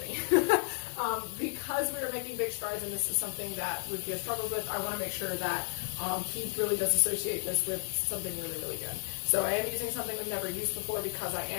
Because we are making big strides and this is something that Rufio struggles with, I want to make sure that he really does associate this with something really, really good. So I am using something we've never used before because I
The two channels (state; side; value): silent; right; digital silence